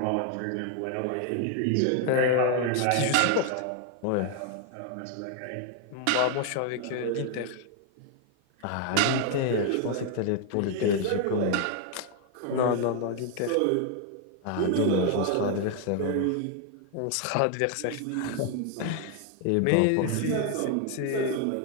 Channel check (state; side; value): different; both; correlation 0.00